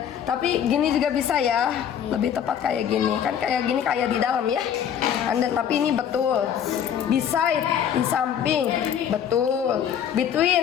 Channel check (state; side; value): quieter; right; 8.9 dB